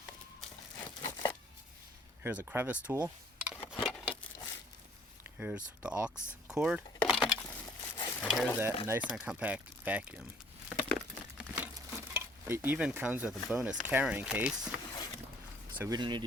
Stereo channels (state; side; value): normal; both; correlation 0.59